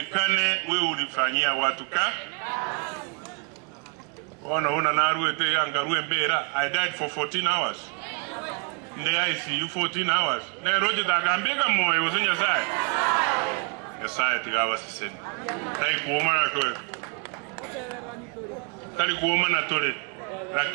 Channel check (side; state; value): left; quieter; 38.0 dB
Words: wewe ulifanyia watu ka. Ona una naruwe te angaruwe mbera. I died for 14 hours. Nde ICU 14 hours. Ne roje takambeka moyo usinya sai. Yesaya tigawa siseni. Tai kuoma na towe. Tali kuoma na tole.